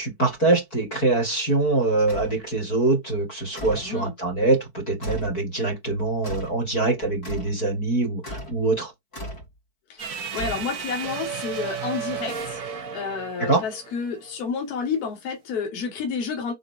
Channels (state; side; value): late; right; 4.6 ms